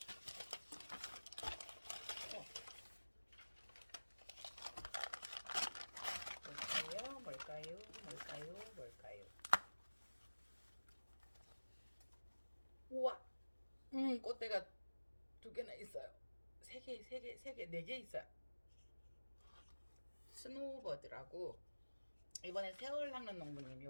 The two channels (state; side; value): inverted; both; correlation -1.00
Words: 뭘까요? 우와! 꽃대가 두 개나 있어요. 세 개, 네 개 있어요. 스노우버드라고 이번에 세월 낚는 농부님